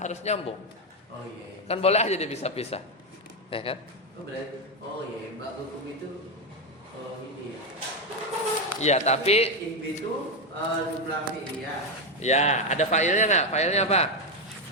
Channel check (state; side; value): normal; both; correlation 0.07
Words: nyambung. Oh iya. Kan boleh aja dipisah-pisah, ya kan? Oh iya, ba'dukum itu ini ya. Iya, tapi itu jumlah fi'liyah. ya ada fa'ilnya nggak? Fa'ilnya apa?